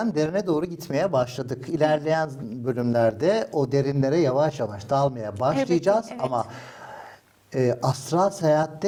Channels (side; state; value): both; identical; correlation 1.00